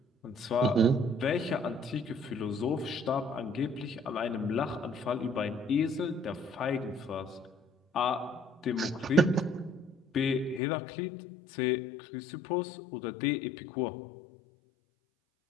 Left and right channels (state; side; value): drops out; right; at 10.6 s